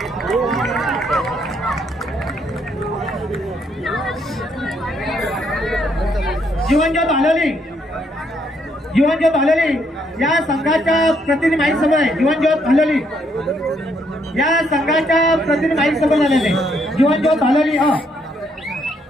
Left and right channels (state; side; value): normal; both; correlation 0.72